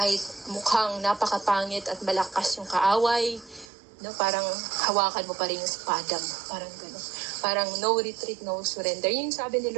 mukhang napakapangit at malakas yung kaaway. No, parang hawakan mo pa rin yung espada mo. Parang gano'n. Parang no retreat, no surrender. Yung sabi ni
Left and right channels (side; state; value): left; drops out; at 3.7 s